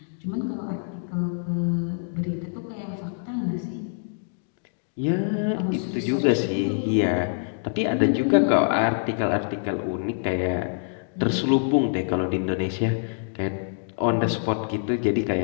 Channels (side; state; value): right; silent; digital silence